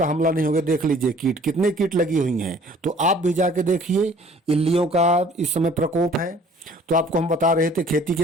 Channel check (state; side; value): normal; both; correlation 0.53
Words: हमला नहीं होगा। देख लीजिए कीट, कितने कीट लगी हुई हैं। तो आप भी जाके देखिए, इल्लियों का इस समय प्रकोप है। तो आपको हम बता रहे थे खेती